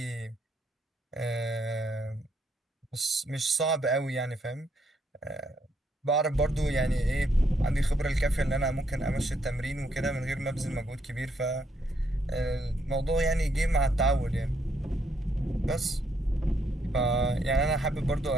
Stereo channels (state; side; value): normal; both; correlation 0.74